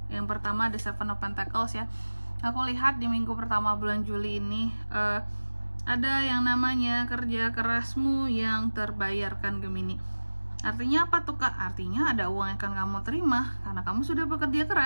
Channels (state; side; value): inverted; both; correlation -1.00